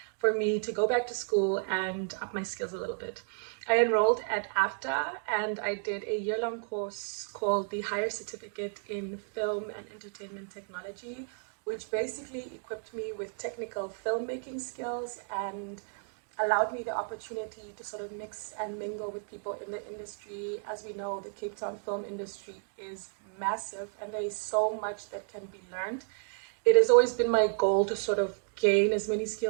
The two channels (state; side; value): silent; left; 56 dB below the other